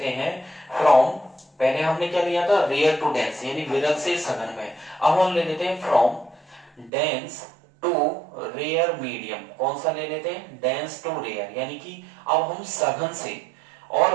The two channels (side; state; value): left; drops out; at 6.9 s